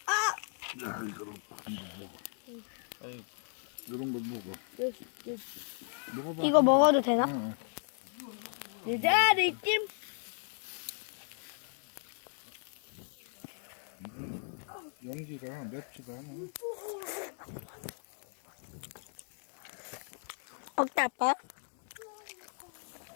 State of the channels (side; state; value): right; silent; 54 dB below the other